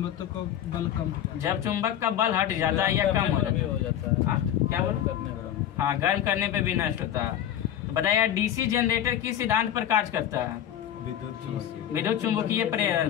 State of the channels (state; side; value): quieter; right; 10.8 dB